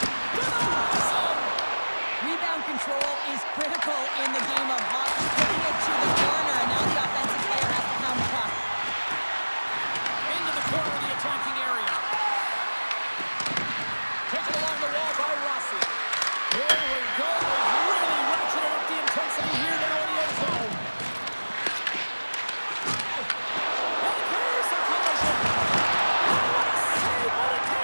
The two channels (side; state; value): both; inverted; correlation -1.00